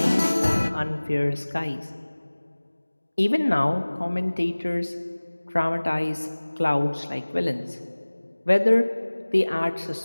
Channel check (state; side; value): inverted; both; correlation -1.00